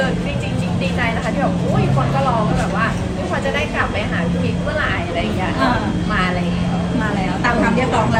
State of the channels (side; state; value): both; identical; correlation 1.00